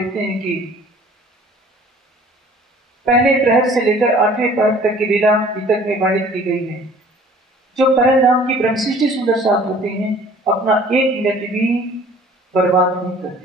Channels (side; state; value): both; normal; correlation 0.51